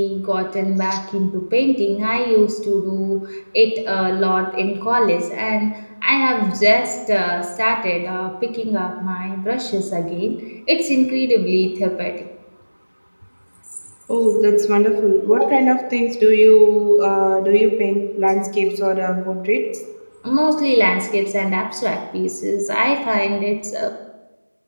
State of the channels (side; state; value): both; inverted; correlation -1.00